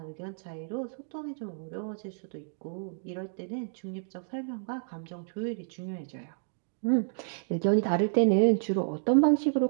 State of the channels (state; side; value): silent; left; digital silence